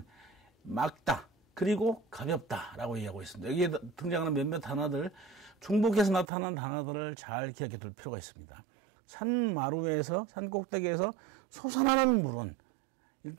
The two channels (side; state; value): left; drops out; at 6.2 s